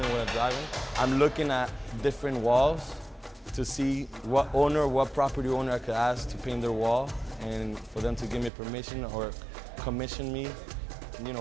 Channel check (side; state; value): left; drops out; at 8.5 s